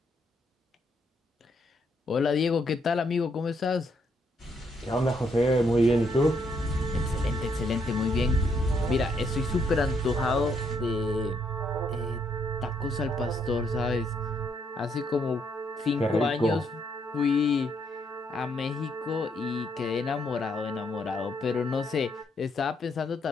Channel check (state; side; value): normal; both; correlation 0.74